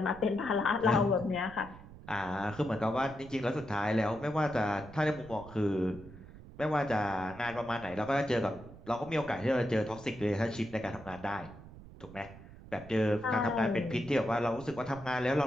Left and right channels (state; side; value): noise; right; rumble, 17 dB below the sound